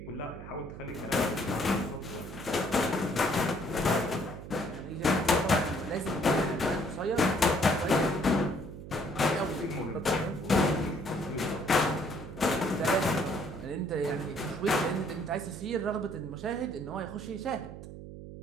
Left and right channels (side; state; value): right; noise; hum, 12 dB below the sound